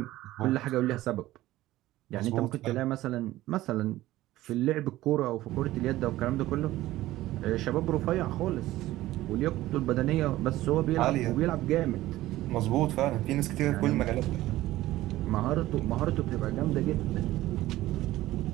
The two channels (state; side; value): quieter; left; 16.0 dB